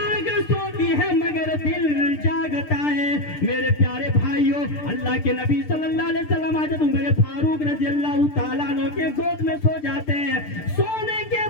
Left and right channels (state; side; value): late; right; 6.7 ms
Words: سوتی ہے مگر دل جاگتا ہے۔ میرے پیارے بھائیوں اللہ کے نبی صلی اللہ علیہ وسلم حضرت عمر فاروق رضی اللہ تعالیٰ عنہ کے گود میں سو جاتے ہیں۔ سونے کے